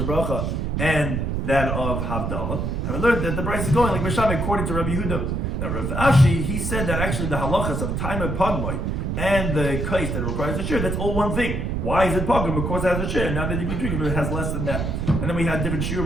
bracha, and that of Havdalah. And we learned that the price is going like Misham according to Rabbi Yehuda. Now Rav Ashi, he said that actually the halachas of time and pagmai and the kais that requires a shiur, that's all one thing. Why is it pagum? Because it has a shiur. Now that you can drink it, but it has less than that. And then we had different shiur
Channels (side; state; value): right; noise; rumble, 1 dB below the sound